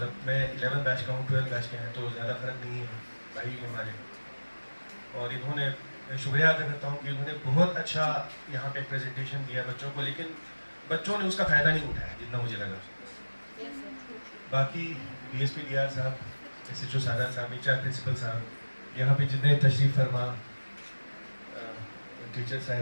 मैं 11 बैच का हूँ, 12 बैच के हैं, तो ज़्यादा फर्क नहीं है, भाई हमारे। और इन्होंने शुक्रिया अदा करता हूँ कि उन्होंने बहुत अच्छा यहाँ पे प्रेजेंटेशन दिया बच्चों को, लेकिन बच्चों ने उसका फ़ायदा नहीं उठाया जितना मुझे लगा। बाकी DSP DR साहब, SHO सादा साहब, HR प्रिंसिपल साहब, यहाँ पे जितने तशरीफ फरमा टीचर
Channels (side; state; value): both; inverted; correlation -1.00